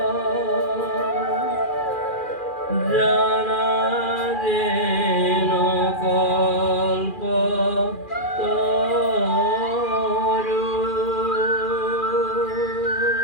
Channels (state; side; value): late; right; 2.4 ms